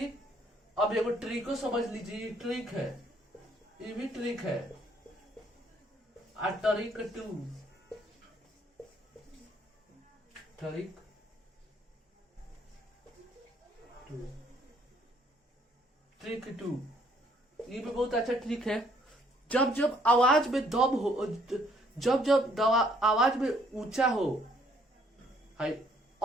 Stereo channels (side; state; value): both; normal; correlation 0.65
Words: अब एगो ट्रिक को समझ लीजिए, ट्रिक है, ये भी ट्रिक है। Trick two, trick trick two, ये भी बहुत अच्छा ट्रिक है। जब जब आवाज में दब हो, जब जब आवाज में ऊंचा हो, हाई